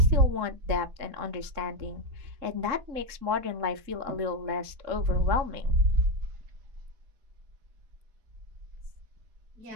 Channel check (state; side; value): late; left; 3.7 ms